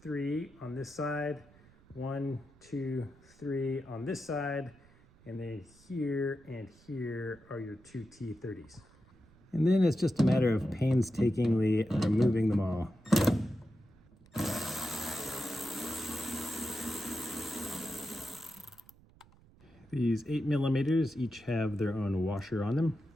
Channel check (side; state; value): right; noise; rumble, 27 dB below the sound